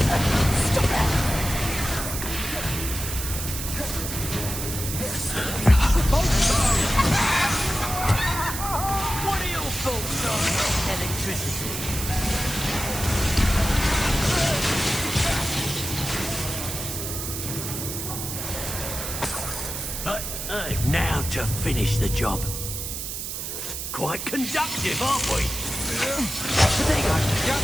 Stop it. What are your thoughts on electricity? Now to finish the job. Quite conductive, aren't we? Potato,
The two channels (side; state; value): right; noise; hiss, 5 dB below the sound